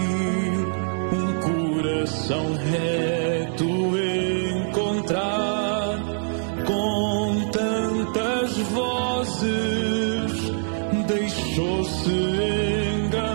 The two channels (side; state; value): left; silent; digital silence